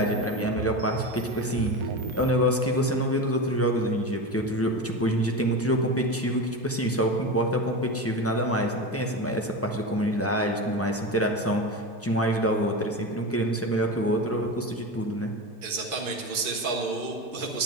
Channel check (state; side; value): normal; both; correlation 0.23